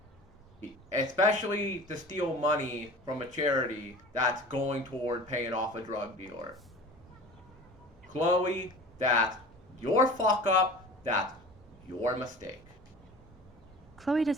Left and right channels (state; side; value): normal; both; correlation 0.39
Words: Especially to steal money from a charity that's going toward paying off a drug dealer. Chloe, that's your fuck up. That's your mistake. Chloe